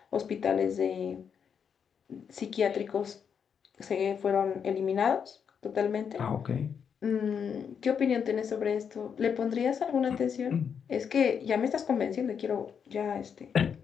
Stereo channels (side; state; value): right; quieter; 7.1 dB